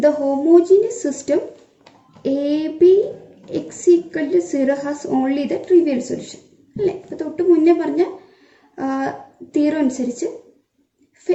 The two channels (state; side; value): identical; both; correlation 1.00